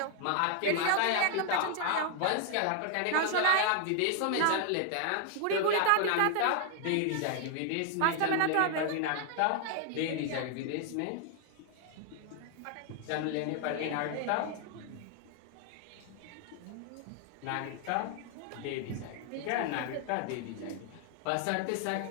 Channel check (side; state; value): both; different; correlation 0.00